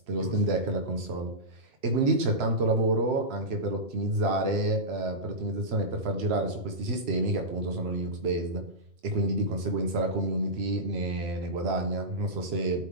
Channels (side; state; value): left; late; 3.0 ms